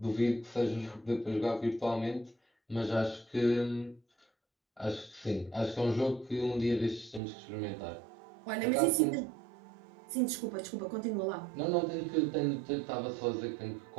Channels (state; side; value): drops out; left; at 7.2 s